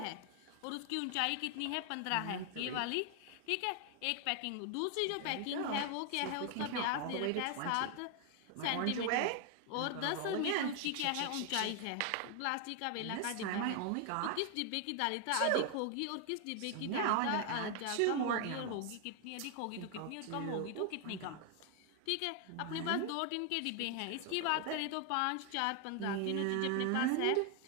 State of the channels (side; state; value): both; different; correlation 0.00